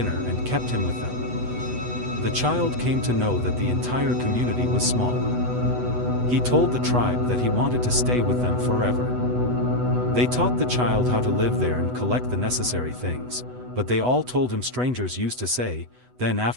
and kept him with them. The child came to know that the entire community was small. He told the tribe that he wanted to stay with them forever. They taught the child how to live there and collect the necessary things, but they all told him strangers used to say. Then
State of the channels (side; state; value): left; late; 8.1 ms